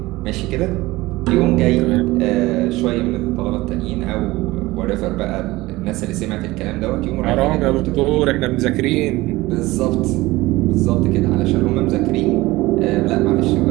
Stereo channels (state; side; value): quieter; left; 19.5 dB